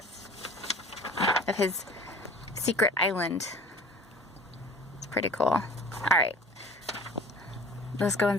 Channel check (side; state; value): both; normal; correlation 0.44